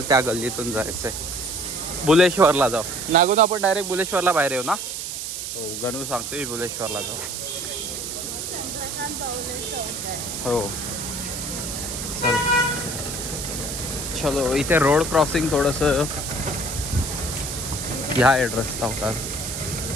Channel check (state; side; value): noise; right; hiss, 5 dB below the sound